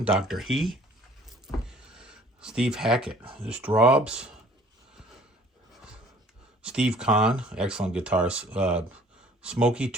Dr. He. Steve Hackett. The Strawbs. Steve Kahn. Excellent guitars. Smokey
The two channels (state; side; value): normal; both; correlation 0.54